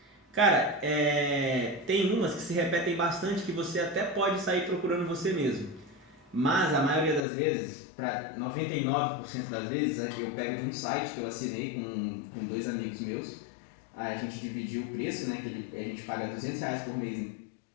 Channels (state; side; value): drops out; right; at 7.2 s